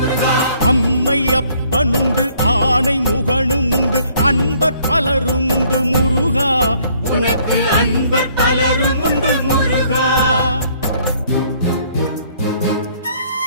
அம்மை அப்பனுண்டு ஆணை முகனும் உண்டு அன்பர் பலரும் உண்டு முருகா உனக்கு அன்பர் பலரும் உண்டு முருகா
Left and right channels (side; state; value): both; inverted; correlation -0.63